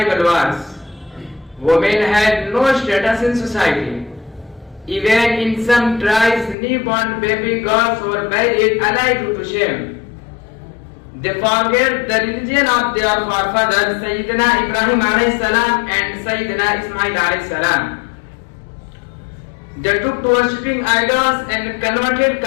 wars. Women had no status in society. Even in some tribes, newborn baby girls were buried alive due to shame. They forget the religion of their forefathers, Sayyidina Ibrahim alayhi salam and Sayyidina Ismail alayhi salam. They took to worshipping idols and converted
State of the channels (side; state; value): right; drops out; at 6.6 s